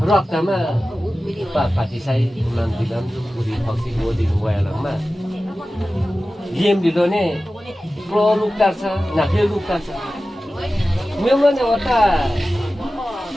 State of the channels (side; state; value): both; normal; correlation 0.95